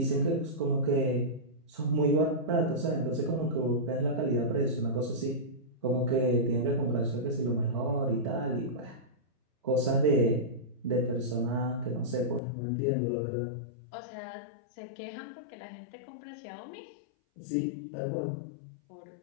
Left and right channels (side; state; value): right; drops out; at 12.4 s